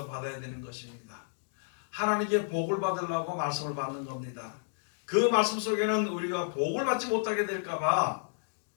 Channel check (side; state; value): right; silent; digital silence